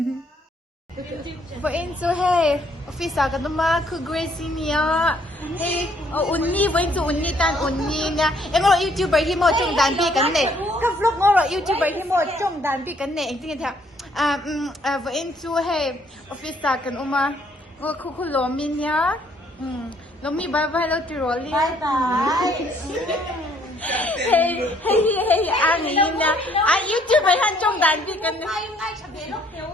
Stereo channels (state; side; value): normal; both; correlation 0.65